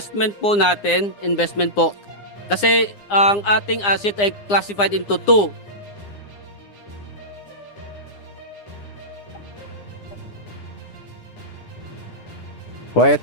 po natin, investment po. Kasi ang ating asset ay classified into two. Quiet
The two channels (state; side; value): late; right; 9.8 ms